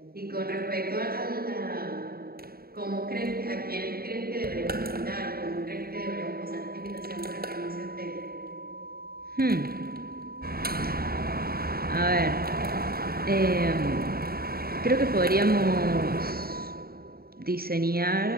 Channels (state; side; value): late; left; 0.44 ms